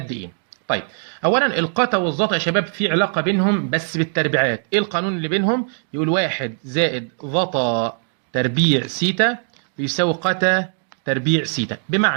إيه؟ طيب، أولا القتا والظاتا يا شباب في علاقة بينهم بس بالتربيعات، إيه القانون اللي بينهم؟ يقول واحد زائد ظاتا تربيع سيتا بيساوي قتا تربيع سيتا،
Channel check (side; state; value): left; silent; 65 dB below the other